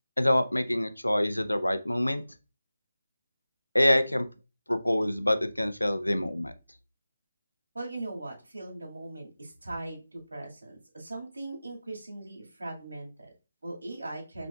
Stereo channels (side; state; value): both; inverted; correlation -0.97